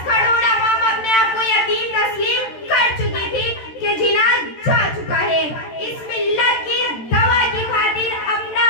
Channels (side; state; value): right; late; 13 ms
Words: करोड़ अवाम अपने आप को यतीम तस्लीम कर चुकी थी कि जिना जा चुका है। इस मिल्लत की दवा की खातिर अपना